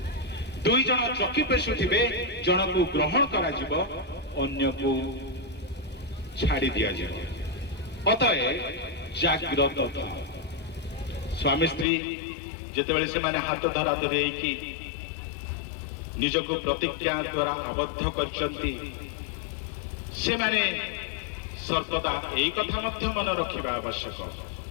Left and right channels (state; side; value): drops out; right; at 11.9 s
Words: दुई जन चकी पेशु थिबे, जन को ग्रहण करा जिवो अन्य को छाड़ी दिया जिवो। अतएव जागृत था। स्वामी स्त्री जेतेबेले से माने हाथ धरा धरी कि निज को प्रतिज्ञा द्वारा आबद्ध करचंती, से माने सर्वदा एक कथा मध्य मन रखिबा आवश्यक।